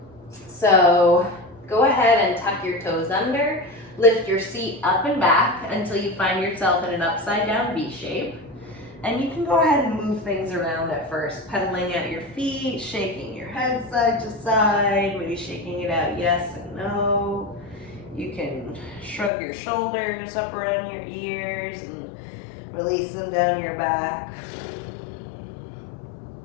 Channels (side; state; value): right; drops out; at 19.3 s